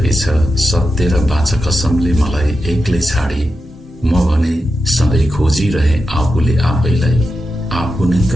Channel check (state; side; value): normal; both; correlation 0.89